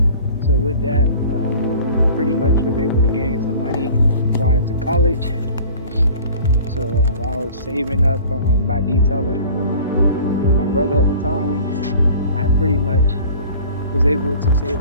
So with that, pretty much was able to gain some money prior to college. So I was saving up by detailing with my brother at the time. I pretty much was able to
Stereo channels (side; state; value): both; inverted; correlation -0.44